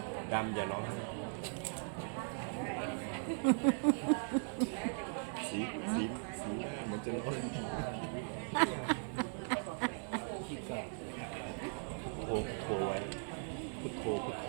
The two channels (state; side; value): silent; left; 52 dB below the other